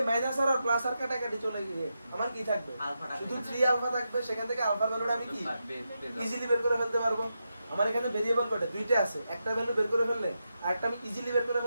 মাইনাস আর প্লাস আর কাটাকাটি চলে গিয়ে আমার কি থাকবে, শুধু 3 আলফা থাকবে। সেখান থেকে আলফার ভ্যালুটা আমি কি ইজিলি বের করে ফেলতে পারবো। আমার এখানে ভেরিয়েবল কয়টা, দুইটা আছে, একটা ভ্যালু বের করে ফেললে আরেকটা আমি ইজিলি বের করে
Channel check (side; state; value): both; inverted; correlation -0.87